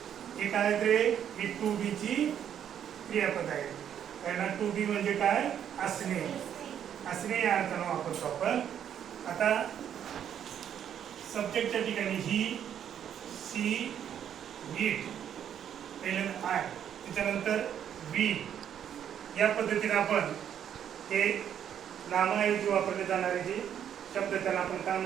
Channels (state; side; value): quieter; left; 9.3 dB